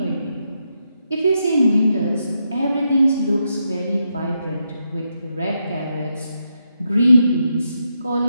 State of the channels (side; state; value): both; inverted; correlation -0.82